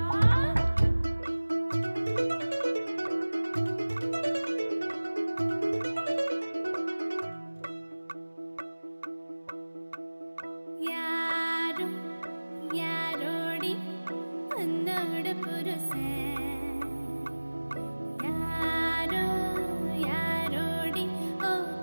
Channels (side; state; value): both; inverted; correlation -1.00